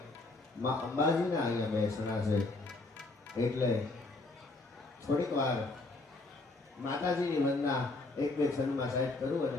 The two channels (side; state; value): right; quieter; 3.2 dB